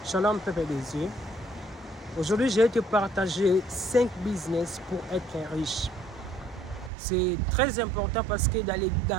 Shalom peuple des dieux. Aujourd'hui, je vais te partager 5 business pour être riche. C'est très important parce que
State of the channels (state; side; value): drops out; left; at 6.9 s